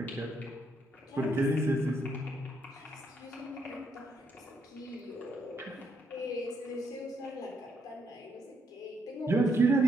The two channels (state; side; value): normal; both; correlation 0.75